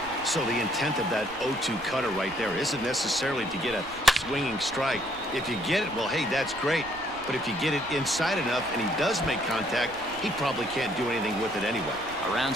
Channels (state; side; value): noise; right; rumble, 20 dB below the sound